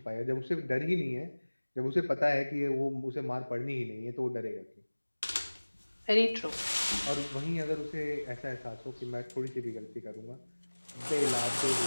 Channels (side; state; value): both; inverted; correlation -1.00